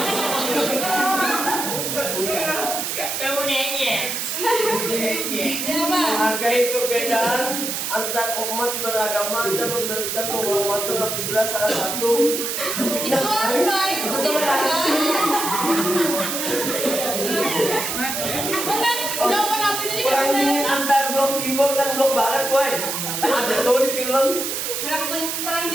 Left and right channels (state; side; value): noise; right; hiss, 2 dB below the sound